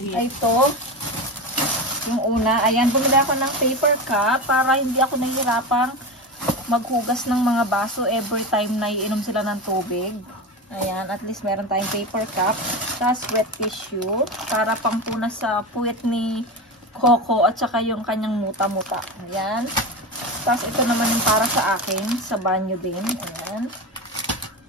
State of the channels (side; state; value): both; normal; correlation 0.22